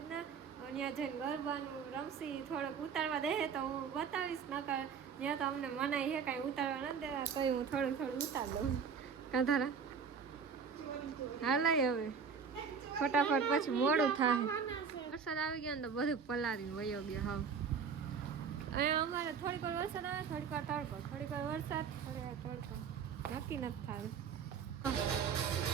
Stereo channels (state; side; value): quieter; left; 6.3 dB